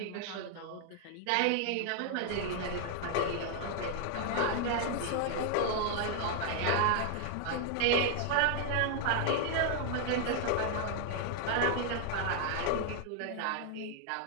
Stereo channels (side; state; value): both; different; correlation 0.00